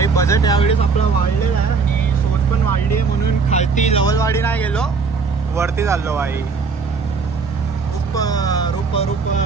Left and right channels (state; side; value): quieter; left; 5.0 dB